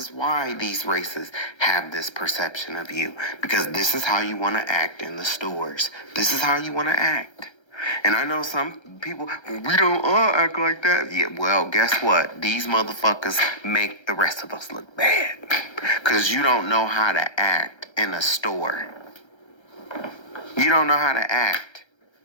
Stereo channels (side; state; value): right; late; 1.3 ms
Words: these races have this perception of you. Because this is how you want to act in the stores. This is how you want to act. And I know some people, we don't all act like that. Yeah, well, guess what? These motherfuckers make the rest of us look bad. Because you don't know how to act in a store. You don't know how to act.